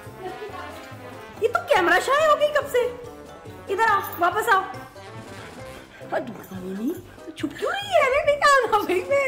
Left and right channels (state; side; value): identical; both; correlation 1.00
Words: ये तो कैमरा शाय हो गई कब से। इधर आओ, वापस आओ। नहीं तो छुप क्यों रही है, अरे नहीं आना भाई, मैं